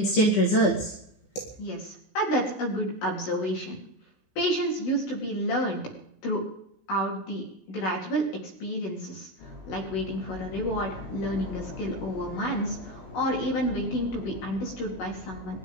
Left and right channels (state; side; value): late; right; 16 ms